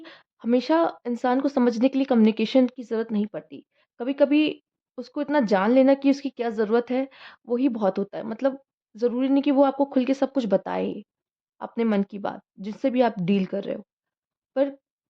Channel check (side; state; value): both; identical; correlation 1.00